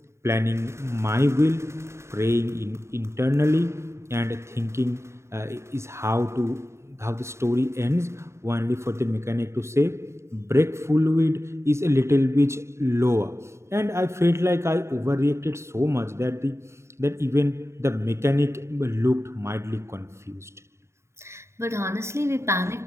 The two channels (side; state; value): left; late; 0.13 ms